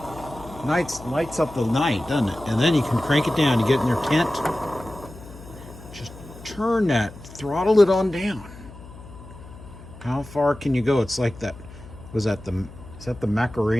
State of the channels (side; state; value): left; noise; hum, 17 dB below the sound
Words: lights up the night, doesn't it? And then you can crank it down. You get in your tent. Just turn that, throttle it on down. How far can you go? It's like that. Is that the